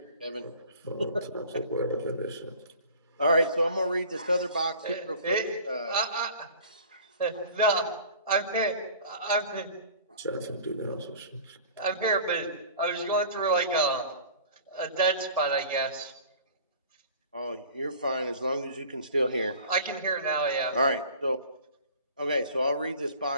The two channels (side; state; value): both; inverted; correlation -0.44